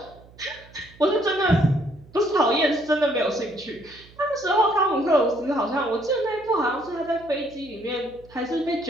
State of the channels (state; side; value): noise; right; hum, 24 dB below the sound